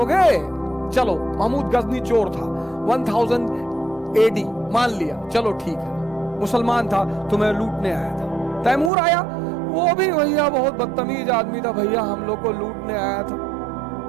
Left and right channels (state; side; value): drops out; left; at 8.9 s